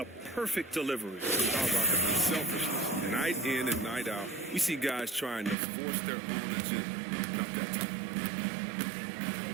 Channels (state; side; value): drops out; left; at 5.6 s